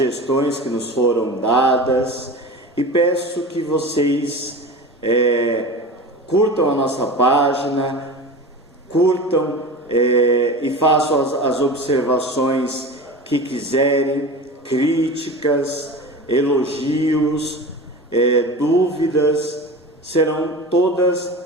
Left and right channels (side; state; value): both; normal; correlation 0.32